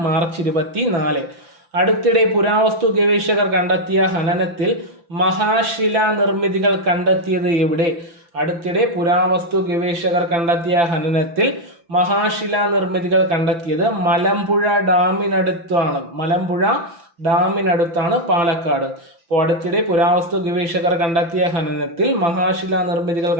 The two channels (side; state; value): left; late; 5.9 ms